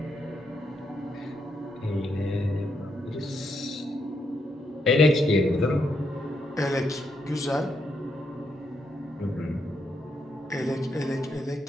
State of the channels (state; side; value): normal; both; correlation 0.79